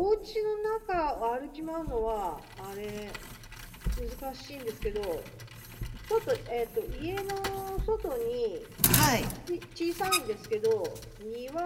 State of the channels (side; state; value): both; identical; correlation 1.00